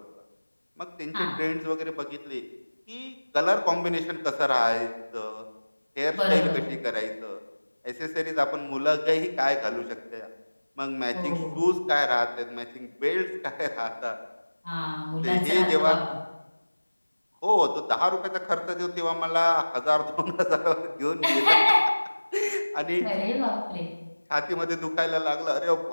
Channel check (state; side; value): inverted; both; correlation -1.00